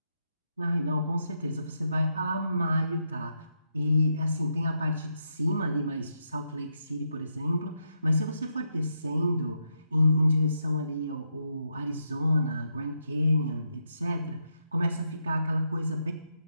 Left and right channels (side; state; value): both; inverted; correlation -0.81